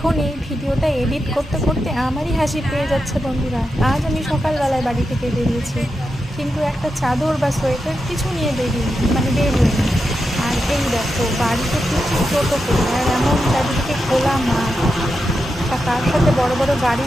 এখন এই ভিডিওটা এডিট করতে করতে আমারই হাসি পেয়ে যাচ্ছে বন্ধুরা। আজ আমি সকালবেলায় বাড়ি থেকে বেরিয়েছি, কিন্তু একটা চাদর বা সোয়েটার কিছু নিয়ে বের হইনি। আর এই দেখো বাড়িতে ফিরছি টোটো করে, আর এমন চারিদিকে খোলা মাঠ, আর তার সাথে বড় বড়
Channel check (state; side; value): normal; both; correlation 0.88